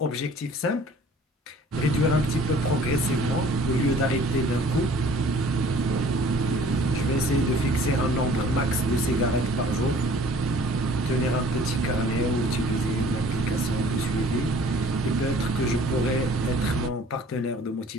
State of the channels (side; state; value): both; normal; correlation 0.52